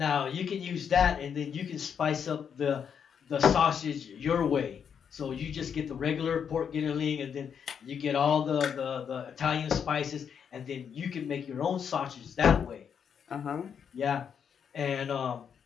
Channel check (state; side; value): quieter; right; 7.4 dB